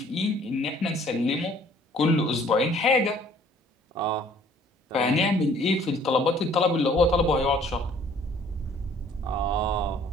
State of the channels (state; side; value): normal; both; correlation 0.57